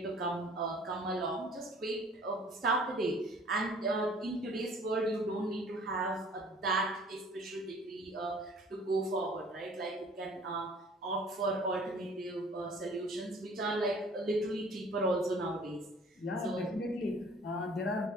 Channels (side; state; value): both; normal; correlation 0.52